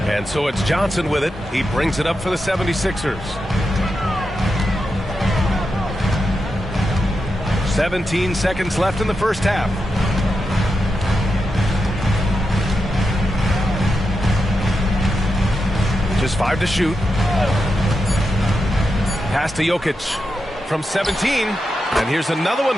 And so it's Johnson with it. He brings it up for the 76ers. 17 seconds left in the first half. Just 5 to shoot. Pass to Jokic from 17. And here's another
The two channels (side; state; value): both; normal; correlation 0.87